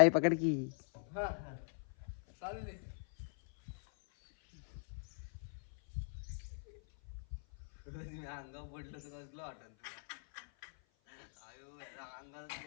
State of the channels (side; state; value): right; silent; 51 dB below the other